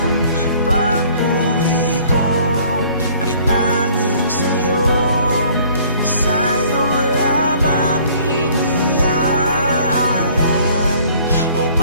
pagpuri ko ay tanging sa'yo, sa'yo lamang iniaalay, o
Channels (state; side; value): inverted; both; correlation -0.55